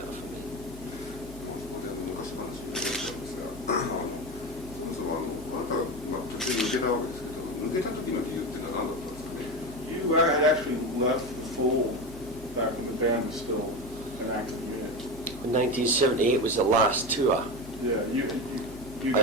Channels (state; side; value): normal; both; correlation 0.21